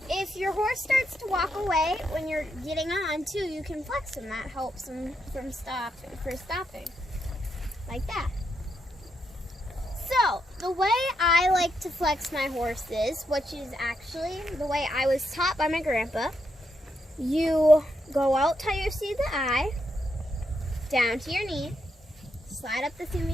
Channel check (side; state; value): both; normal; correlation 0.81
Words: if your horse starts to walk away when you're getting on too, you can flex him. That helps him from stopping. Like that. So, the way I like to flex my horses, which is actually the way I was taught by my grandpa, you go out till you see the eye, down to your knee, slide up the seam